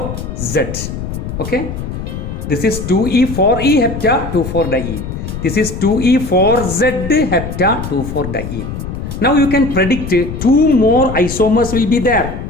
Okay, this is 2E 4E hepta 2, 4 diene. This is 2E 4Z hepta 2, 4 diene. Now you can predict 2 more isomers will be there.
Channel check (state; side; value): noise; left; rumble, 7 dB below the sound